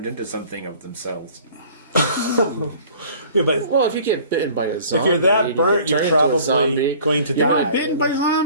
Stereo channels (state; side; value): inverted; both; correlation -0.49